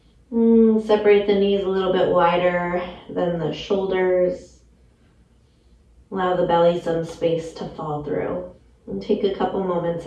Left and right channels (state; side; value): identical; both; correlation 1.00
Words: Separate the knees a little bit wider than the shoulders. Allow the belly some space to fall through. And take a couple moments